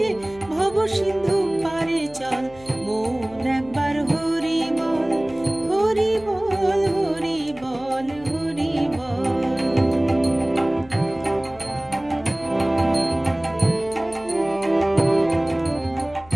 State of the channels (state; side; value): noise; left; hum, 23 dB below the sound